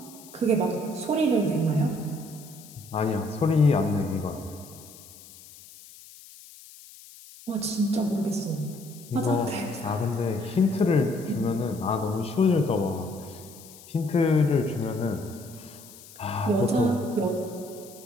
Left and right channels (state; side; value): noise; left; hiss, 20 dB below the sound